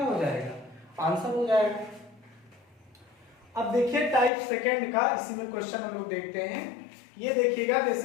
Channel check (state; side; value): drops out; right; at 4.3 s